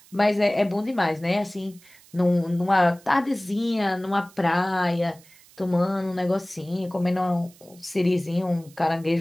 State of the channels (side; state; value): right; noise; hiss, 26 dB below the sound